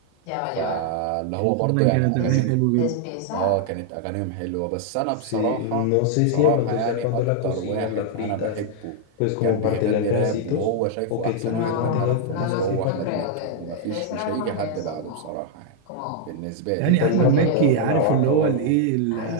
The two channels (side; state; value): both; different; correlation 0.00